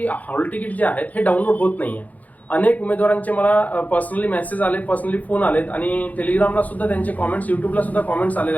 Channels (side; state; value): right; late; 0.077 ms